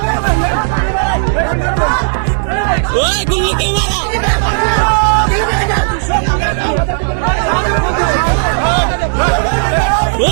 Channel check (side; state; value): left; silent; digital silence